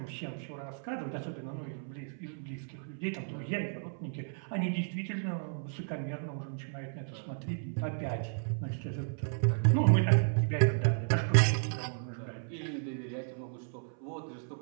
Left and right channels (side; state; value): left; silent; 55 dB below the other